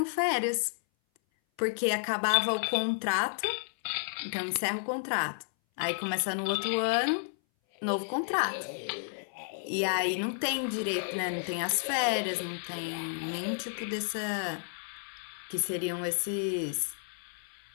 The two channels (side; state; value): right; silent; 57 dB below the other